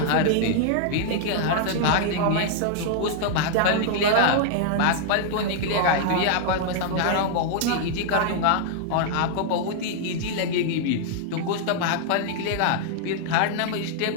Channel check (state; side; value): different; both; correlation -0.01